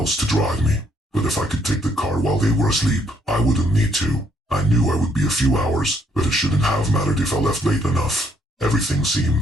to drive me. But if I could take the car while they were asleep, I wouldn't need to. I knew I would be a few hours, but it shouldn't have mattered if I left late enough. Everything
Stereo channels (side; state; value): both; normal; correlation 0.69